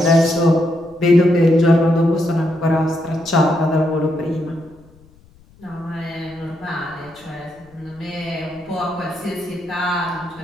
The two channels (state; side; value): noise; left; rumble, 28 dB below the sound